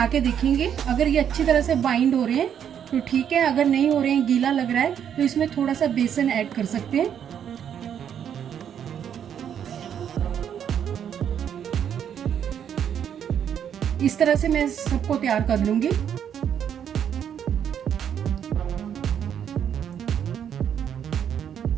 के देखेंगे। अगर ये अच्छी तरह से बाइंड हो रहे हैं तो ठीक है, अगर नहीं हो रहे हैं, गीला लग रहा है, तो इसमें थोड़ा सा बेसन ऐड कर सकते हैं। इस तरह से मैं सबको तैयार कर लूंगी।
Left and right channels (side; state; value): left; quieter; 8.8 dB